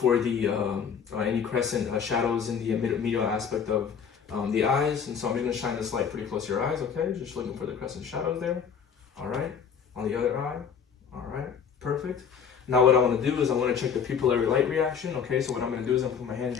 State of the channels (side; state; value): right; quieter; 7.0 dB